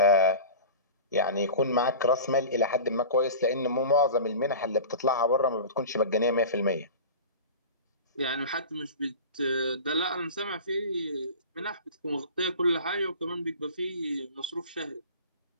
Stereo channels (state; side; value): inverted; both; correlation -0.35